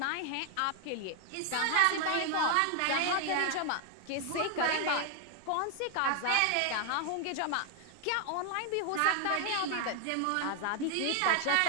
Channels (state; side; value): different; both; correlation 0.00